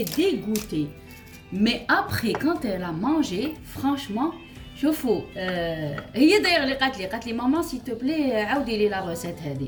dégoûtée. Mais après, quand elle a mangé, franchement, شوفوا, هي d'ailleurs اللي قالت لي ماما s'il te plaît عاودي لي la recette هذه.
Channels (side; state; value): both; identical; correlation 1.00